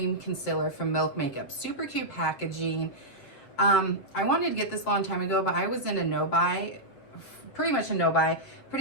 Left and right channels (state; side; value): late; right; 7.5 ms